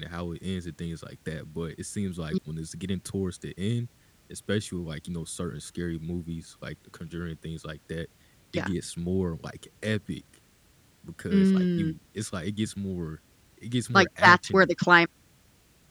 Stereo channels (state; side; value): identical; both; correlation 1.00